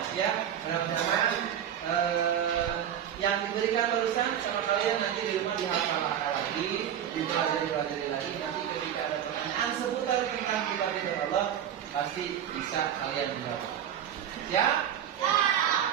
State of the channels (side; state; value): left; quieter; 9.7 dB